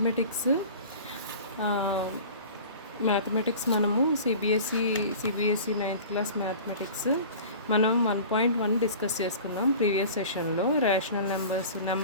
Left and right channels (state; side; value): inverted; both; correlation -0.40